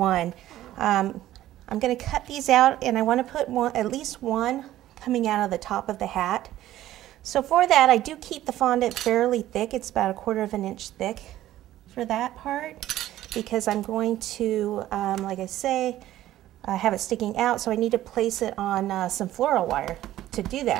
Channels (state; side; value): quieter; left; 13.9 dB